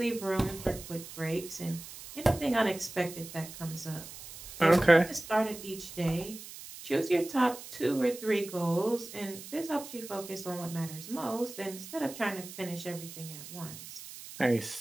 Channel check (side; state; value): right; noise; hiss, 13 dB below the sound